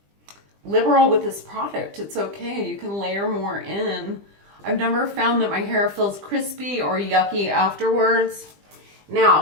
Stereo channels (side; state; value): left; late; 20 ms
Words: liberal with this product. It's okay. You can layer more in. I've never found that my hair feels crispy or yucky afterwards.